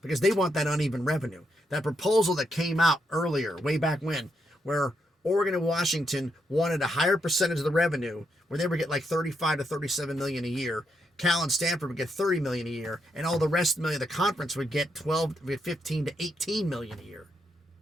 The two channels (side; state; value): both; normal; correlation 0.80